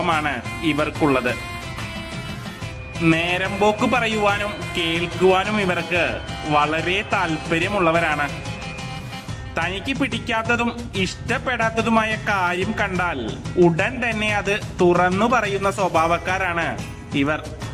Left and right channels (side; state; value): both; identical; correlation 1.00